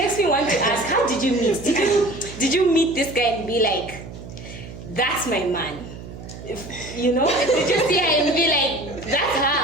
me want to ask: how did you meet? Did you meet this guy and be like, "That's my man"? You know, did you see her and be like, "That's her"?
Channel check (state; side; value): noise; right; hum, 13 dB below the sound